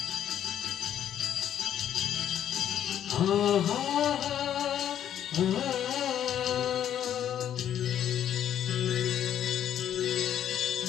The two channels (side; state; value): right; quieter; 10.3 dB